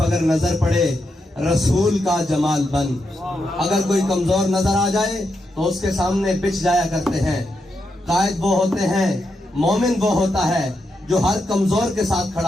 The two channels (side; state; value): both; normal; correlation 0.84